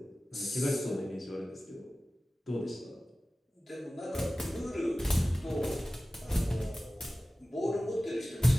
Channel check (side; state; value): both; normal; correlation 0.97